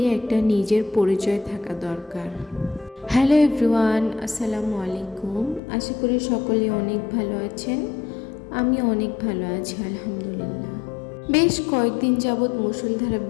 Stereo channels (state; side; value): drops out; right; at 5.6 s